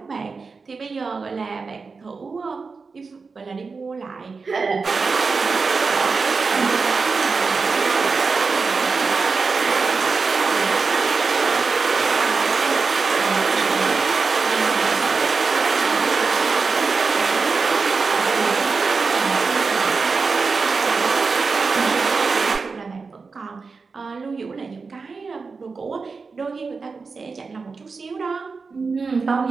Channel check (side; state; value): left; quieter; 4.6 dB